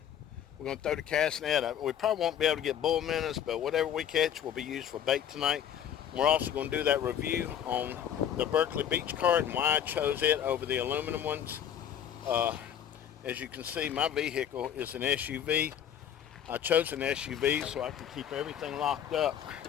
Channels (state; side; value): quieter; right; 9.5 dB